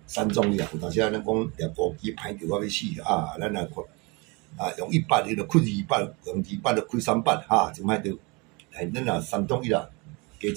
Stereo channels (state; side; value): quieter; left; 28.2 dB